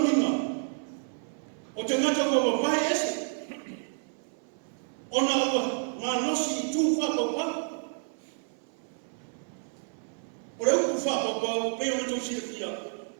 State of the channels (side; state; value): left; silent; 58 dB below the other